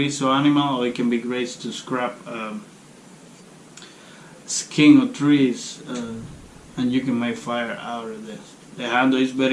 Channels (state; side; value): identical; both; correlation 1.00